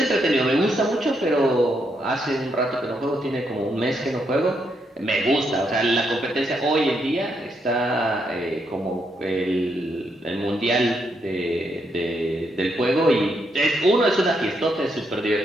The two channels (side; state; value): both; normal; correlation 0.78